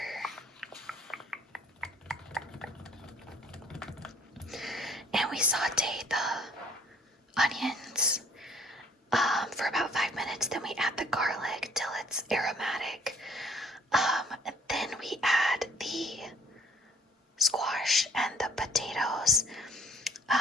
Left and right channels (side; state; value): both; normal; correlation 0.57